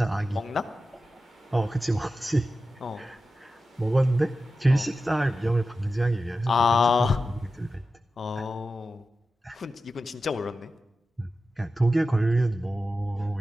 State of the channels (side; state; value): both; normal; correlation 0.92